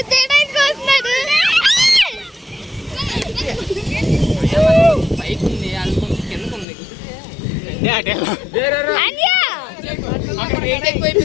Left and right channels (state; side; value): drops out; right; at 6.7 s